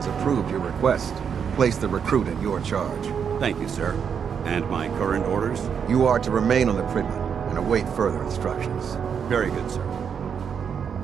approved your request. Place the recruit in your charge. Thank you, sir. And my current orders? You are to remain on the Prigman and await further instructions. Very good, sir.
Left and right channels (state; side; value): quieter; left; 7.2 dB